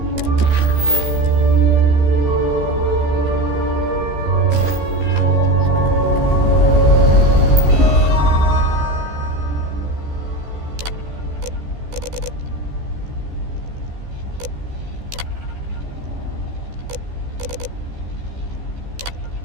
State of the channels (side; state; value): left; late; 14 ms